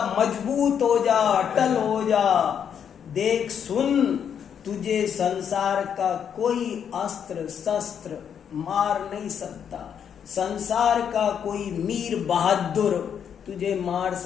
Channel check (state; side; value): quieter; right; 8.1 dB